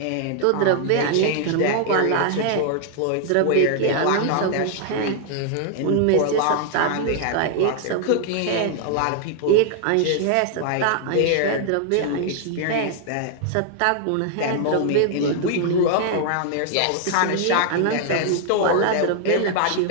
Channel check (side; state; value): both; different; correlation 0.00